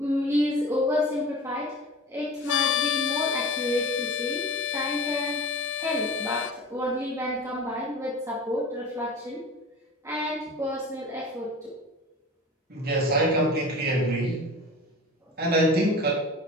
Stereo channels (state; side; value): normal; both; correlation 0.36